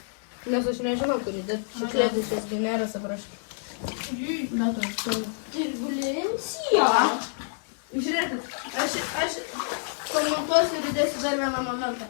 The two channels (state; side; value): silent; right; 57 dB below the other